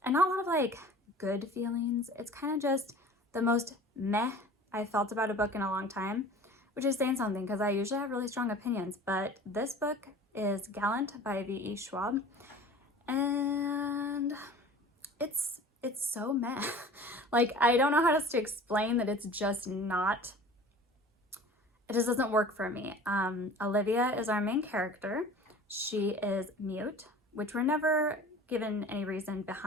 and not a lot of like good feelings. It's kind of just the most meh I felt about a book in a long time, which is saying something because I usually have really strong opinions, but this book is Gallant by V.E. Schwab, and it's so meh. Like, I don't know how else to explain that. It's just not, it just doesn't work for me. Olivia is our main character. She is mute, which we're never given any reason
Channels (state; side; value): normal; both; correlation 0.42